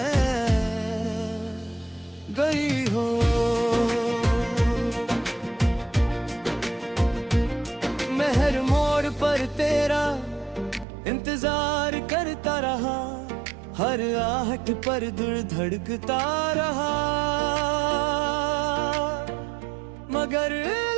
गई हो। मैं हर मोड़ पर तेरा इंतजार करता रहा, हर आहट पर दिल धड़कता रहा, मगर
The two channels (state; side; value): drops out; left; at 10.9 s